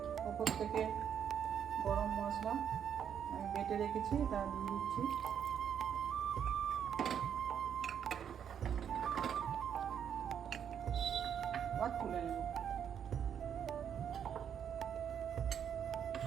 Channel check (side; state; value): left; quieter; 8.5 dB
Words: ওপর থেকে গরম মশলা আমি বেটে রেখেছি, তা দিয়ে দিচ্ছি। আবার তুলে নেব।